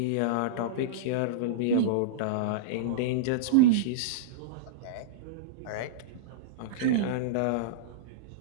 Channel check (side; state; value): both; different; correlation -0.03